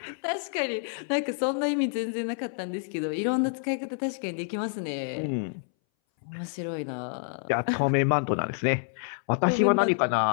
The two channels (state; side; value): silent; right; 59 dB below the other